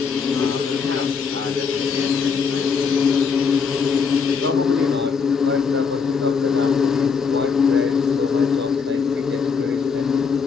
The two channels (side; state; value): right; quieter; 5.7 dB